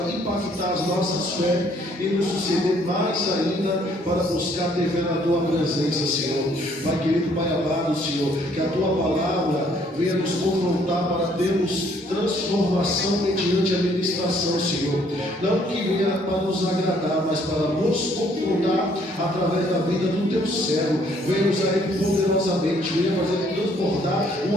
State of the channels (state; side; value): normal; both; correlation 0.64